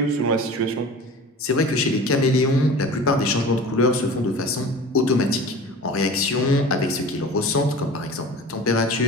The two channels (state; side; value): normal; both; correlation 0.38